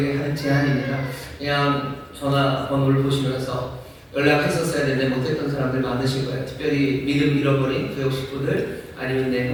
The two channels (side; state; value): both; identical; correlation 1.00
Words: 하는 제안입니다. 그냥 전화번호를 보시면서 연락했었어야 되는데 못했던 사람들 많으실 거예요. 특별히 믿음 잃어버린 교육 식구들 아니면 내